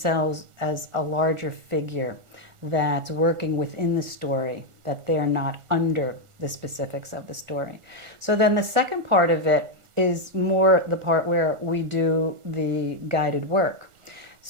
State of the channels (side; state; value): left; late; 1.4 ms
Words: as a larger figure that's working within the story, that they're not under the specifics of the story. So then the second part of it is more the part where we do the guided work.